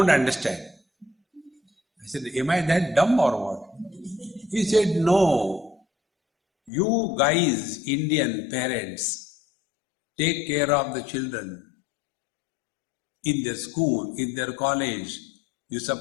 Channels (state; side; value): drops out; right; at 6.7 s